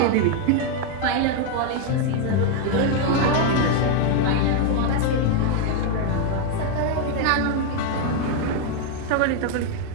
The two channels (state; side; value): different; both; correlation 0.01